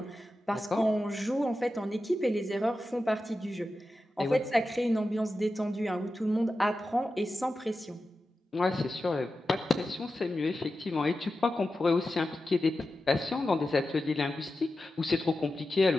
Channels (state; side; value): normal; both; correlation 0.92